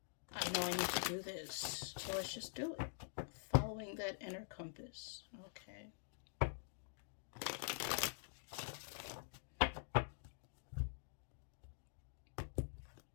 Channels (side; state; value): right; silent; digital silence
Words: I know I need to do this, so let's just do it. Following that inner compass. Okay.